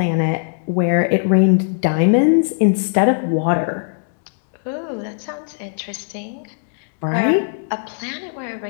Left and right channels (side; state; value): right; silent; digital silence